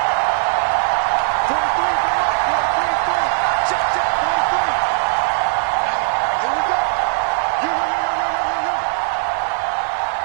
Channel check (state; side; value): silent; left; digital silence